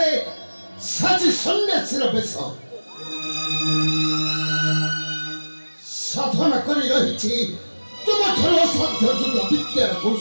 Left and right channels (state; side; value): inverted; both; correlation -1.00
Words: साजी सन्यासीर बेश साधना करी रही तुम ठार असाध्य जुग विद्यार